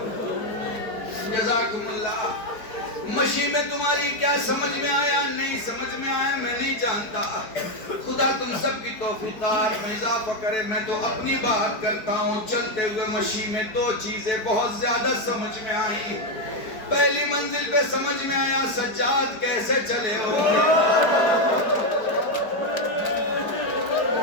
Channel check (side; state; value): right; late; 4.6 ms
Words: جزاکم اللہ۔ مشی میں تمہاری کیا سمجھ میں آیا نہیں سمجھ میں آیا میں نہیں جانتا، خدا تم سب کی توفیقات میں اضافہ کرے۔ میں تو اپنی بات کرتا ہوں، چلتے ہوئے مشی میں 2 چیزیں بہت زیادہ سمجھ میں آئیں۔ پہلی منزل پہ سمجھ میں آیا سجاد کیسے چلے ہو،